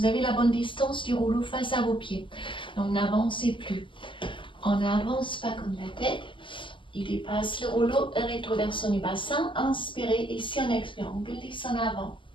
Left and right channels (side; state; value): right; late; 0.25 ms